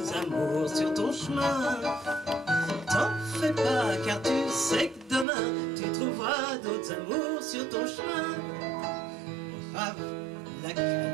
amours sur ton chemin. T'en fais pas, car tu sais que demain tu trouveras d'autres amours sur ton chemin. Brave la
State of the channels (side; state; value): left; drops out; at 5.2 s